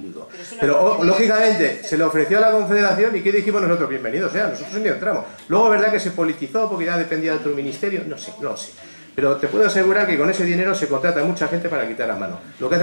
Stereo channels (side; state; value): both; inverted; correlation -1.00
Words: Pero, lógicamente, se le ofreció a la Confederación y ¿qué dijimos nosotros? Bienvenidos sea, nosotros ni entramos. Luego, ¿verdad que se politizó porque ya dependía de otro ministerio? No sé, no lo sé. Pero te puedo asegurar que con ese dinero se contrata a mucha gente para quitar a mano. Lo que